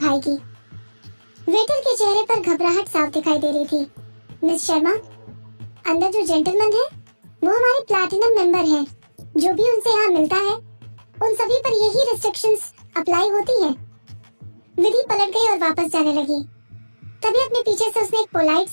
वेटर के चेहरे पर घबराहट साफ दिखाई दे रही थी। मिस शर्मा, अंदर जो जेंटलमैन है वो हमारे प्लैटिनम मेंबर हैं। जो भी उनसे यहाँ मिलता है उन सभी पर यही रिस्ट्रिक्शंस अप्लाई होती हैं। विधि पलट गई और वापस जाने लगी। तभी अपने पीछे से उसने एक पोलाइट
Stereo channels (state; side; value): inverted; both; correlation -1.00